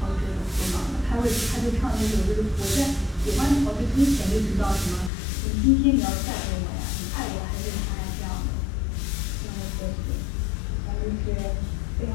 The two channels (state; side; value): drops out; right; at 5.1 s